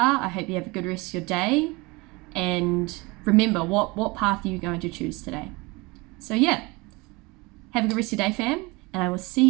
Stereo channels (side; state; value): left; quieter; 24.9 dB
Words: I hope you have a good rest of your day. And remember, what path are you going to choose today? So yeah, have a good rest of your day, fam. And I will see